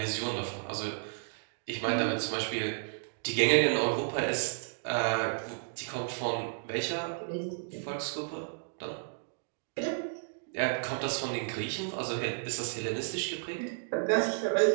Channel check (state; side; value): silent; left; digital silence